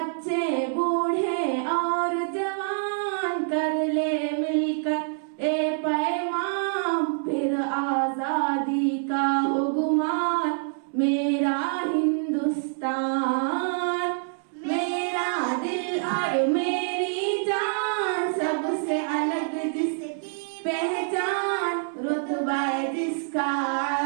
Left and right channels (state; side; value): silent; left; 61 dB below the other